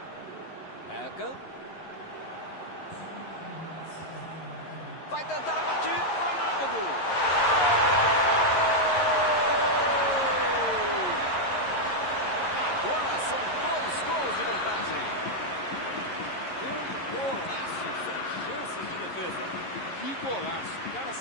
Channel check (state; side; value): late; right; 11 ms